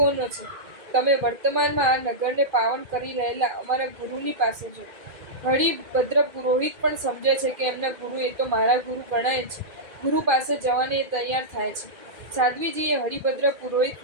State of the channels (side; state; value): left; late; 2.4 ms